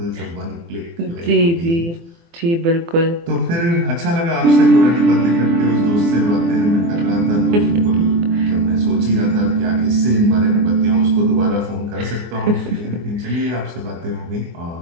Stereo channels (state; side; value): late; left; 24 ms